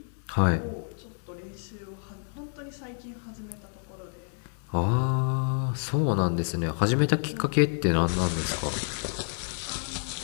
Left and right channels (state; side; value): silent; right; 56 dB below the other